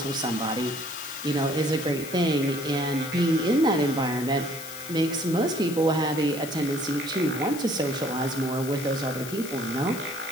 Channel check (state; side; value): noise; left; hiss, 11 dB below the sound